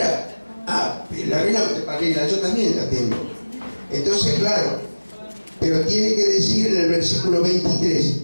Ah, la Reina Valera, yo también la tengo. Entonces, claro. Pero tiene que decir en el versículo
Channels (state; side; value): inverted; both; correlation -1.00